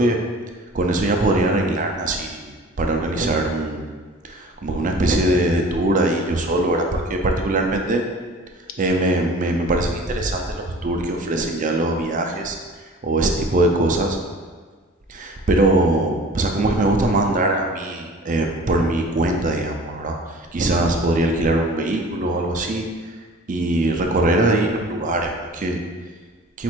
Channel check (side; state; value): both; normal; correlation 0.44